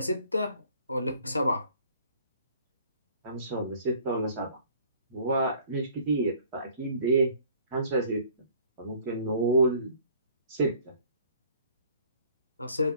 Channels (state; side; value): inverted; both; correlation -0.55